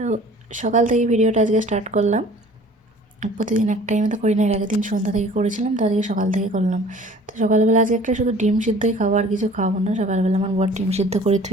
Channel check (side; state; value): both; normal; correlation 0.49